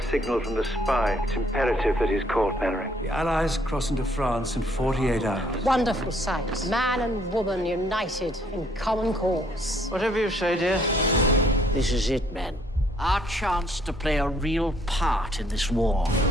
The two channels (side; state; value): both; normal; correlation 0.65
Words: signal from the spy. It's imperative that he's caught, Mannering. The Allies cross into France in 48 hours. Wonderful sight. Man and woman united in common cause. Whatever you say, dear. This is it, man. Our chance to play a real part in this war.